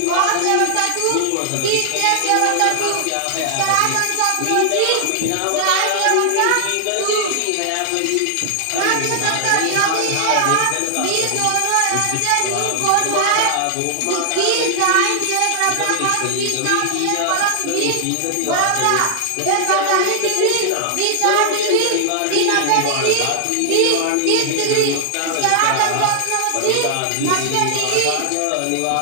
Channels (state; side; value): different; both; correlation 0.00